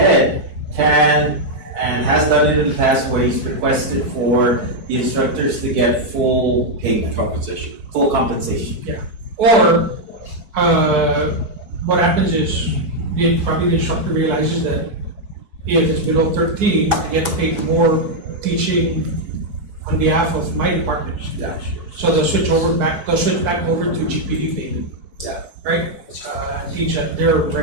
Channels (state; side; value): late; left; 4.6 ms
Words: can and has done it in the past where he's requested for the instructors to get full payment, compensation? full compensation. Or, what happens is, probably the instructor realizes that if it's below 13, I get paid more teaching on behalf of my department. So they'll switch back over to GPD payment. Yeah. Right? Teach at their